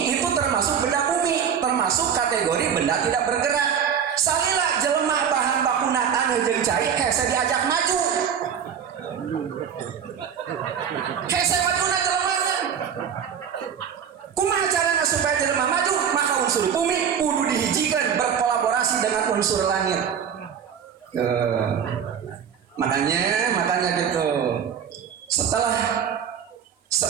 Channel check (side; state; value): left; quieter; 7.8 dB